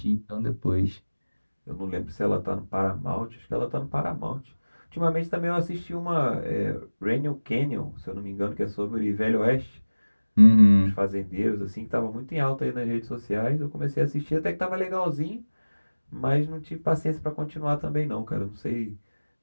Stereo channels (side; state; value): both; inverted; correlation -1.00